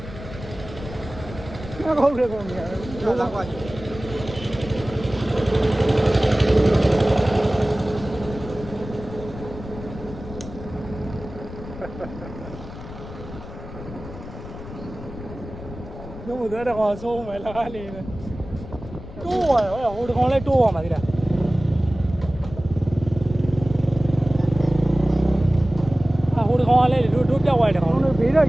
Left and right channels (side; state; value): left; noise; rumble, 13 dB below the sound